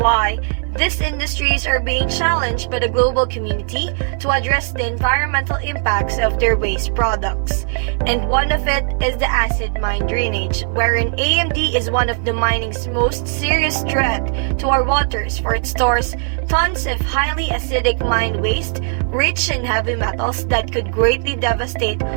these industries are being challenged by the global community to address the environmental impacts of their waste products. And one of it is the acid mine drainage, wherein AMD is one of the mining's most serious threat to our waters, for it stores tons of highly acidic mine waste rich in heavy metals that could greatly devastate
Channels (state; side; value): silent; left; 62 dB below the other